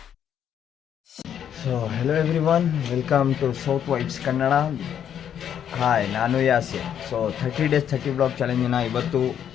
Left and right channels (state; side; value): quieter; right; 9.2 dB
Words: So hello everyone, welcome to south vibes Kannada. Hi, ನಾನು ಯಾಸಿನ್. ಸೊ 30 days 30 ಬ್ಲಾಗ್ ಚಾಲೆಂಜಿನ ಇವತ್ತು